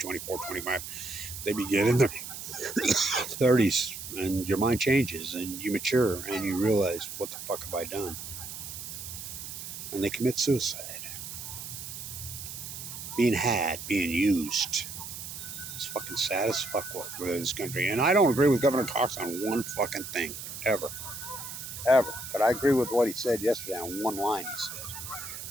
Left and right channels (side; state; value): right; noise; hiss, 9 dB below the sound